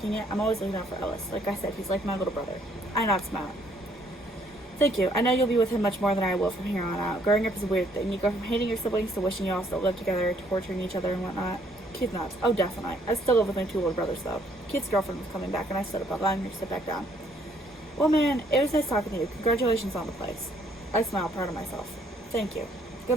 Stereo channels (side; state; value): both; normal; correlation 0.66